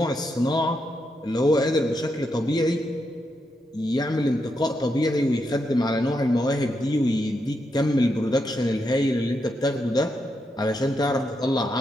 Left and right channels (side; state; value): both; normal; correlation 0.83